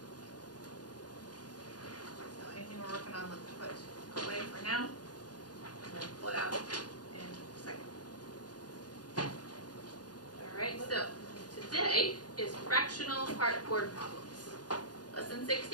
So anything we're working on, let's put away for now. And then pull it out in a second. Alright, so today is fractional part word problems. Lesson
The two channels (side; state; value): right; late; 0.69 ms